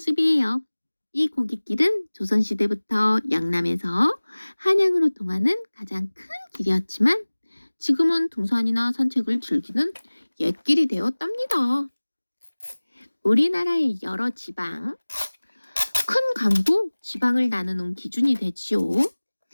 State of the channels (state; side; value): inverted; both; correlation -1.00